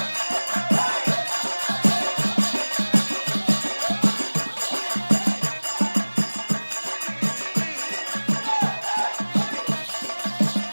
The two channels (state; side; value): inverted; both; correlation -1.00